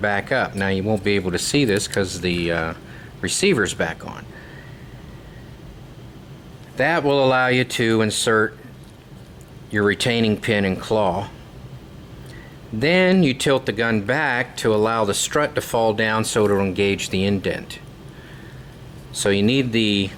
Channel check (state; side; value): identical; both; correlation 1.00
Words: up. Now you won't be able to see this because the receiver's back on. That will allow you to insert your retaining pin and claw. Then you tilt the gun back to allow the strut to fall down so it'll engage the indent. So you need the